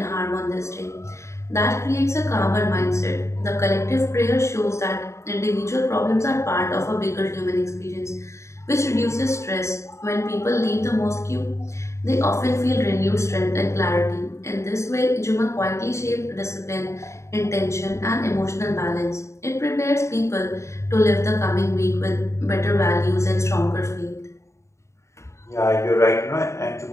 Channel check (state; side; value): late; right; 0.14 ms